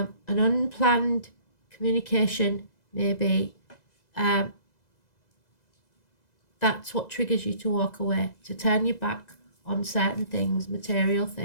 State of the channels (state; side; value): late; right; 2.0 ms